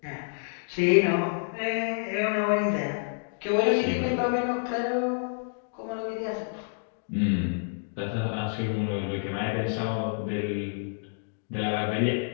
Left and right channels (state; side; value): silent; right; digital silence